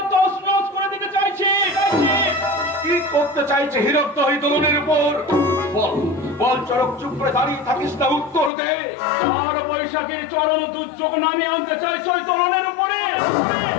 তছনছ করে দিতে চাইছে। কি করতে চাইছে হীরক দহি দোলনের উপর? বল চরক, চুপ করে দাঁড়িয়ে থাকিস না, উত্তর দে। আর বৈশাখীর চরম দুর্যোগ নামিয়ে আনতে চাইছে ওই তরুণের উপরে।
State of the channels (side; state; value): right; drops out; at 8.5 s